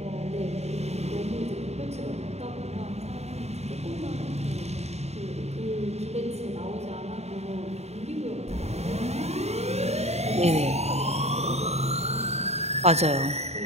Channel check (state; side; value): late; left; 0.31 ms